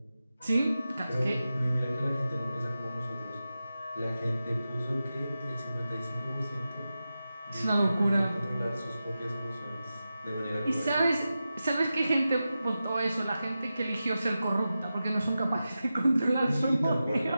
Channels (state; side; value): inverted; both; correlation -0.92